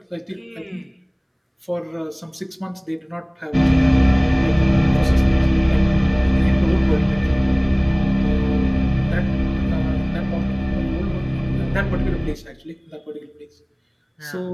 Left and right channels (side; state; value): both; identical; correlation 1.00